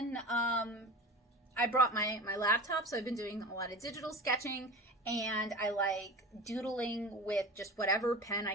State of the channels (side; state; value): both; normal; correlation 0.33